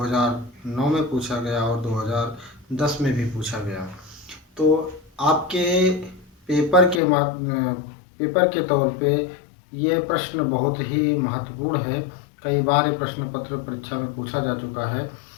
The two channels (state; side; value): drops out; right; at 7.0 s